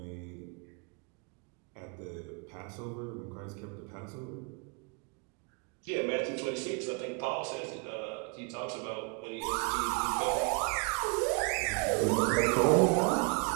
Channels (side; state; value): left; quieter; 34.1 dB